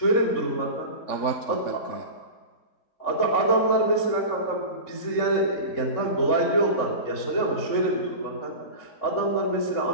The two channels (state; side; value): late; right; 3.6 ms